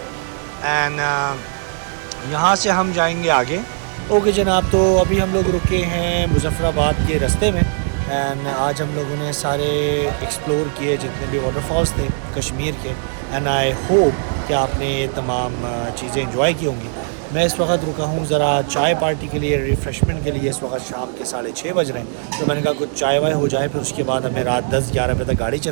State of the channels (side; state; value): left; silent; digital silence